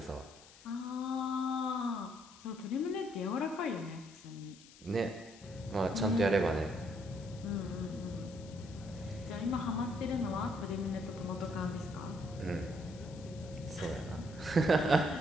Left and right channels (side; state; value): left; noise; hiss, 21 dB below the sound